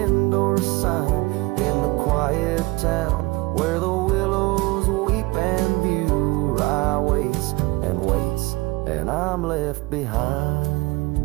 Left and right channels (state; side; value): quieter; left; 22.4 dB